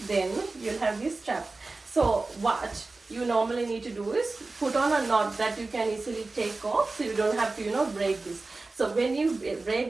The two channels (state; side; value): quieter; left; 3.5 dB